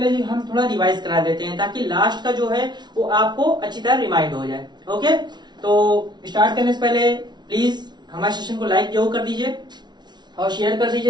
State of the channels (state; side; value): late; left; 0.20 ms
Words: हम थोड़ा रिवाइज करा देते हैं ताकि लास्ट का जो है वो आपको अच्छी तरह रिमाइंड हो जाए। ओके, तो स्टार्ट करने से पहले प्लीज हमारे सेशन को लाइक जरूर कर दीजिए और शेयर कर